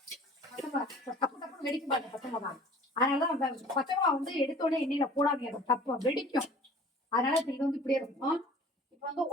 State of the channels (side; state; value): both; normal; correlation 0.47